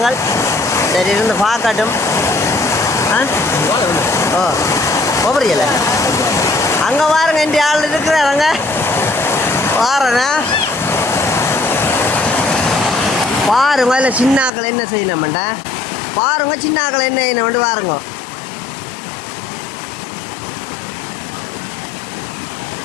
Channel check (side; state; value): right; drops out; at 14.5 s